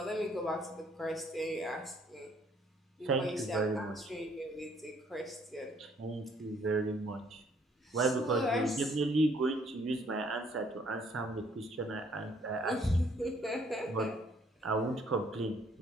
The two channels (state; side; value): normal; both; correlation 0.64